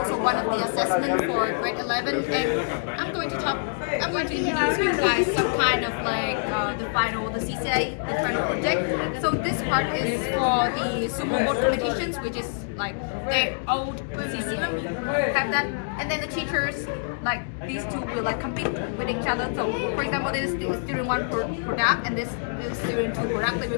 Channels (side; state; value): right; silent; digital silence